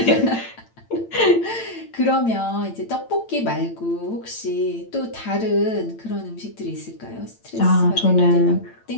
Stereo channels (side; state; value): right; late; 8.9 ms